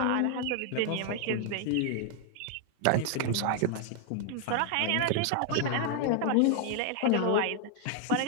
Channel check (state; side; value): different; both; correlation 0.00